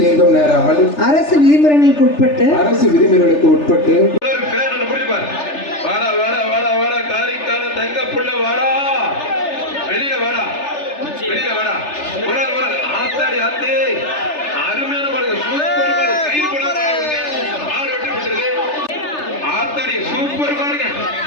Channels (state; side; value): late; right; 3.3 ms